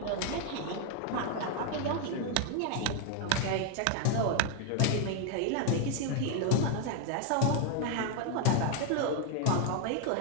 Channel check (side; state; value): both; different; correlation 0.00